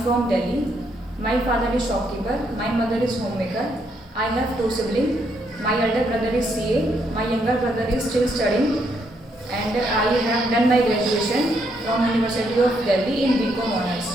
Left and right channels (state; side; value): normal; both; correlation 0.75